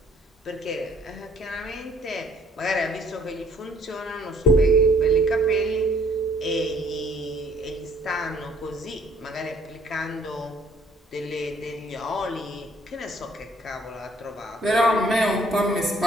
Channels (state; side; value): normal; both; correlation 0.62